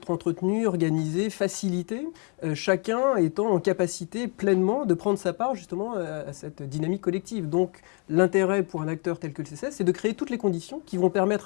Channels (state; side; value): quieter; right; 36.7 dB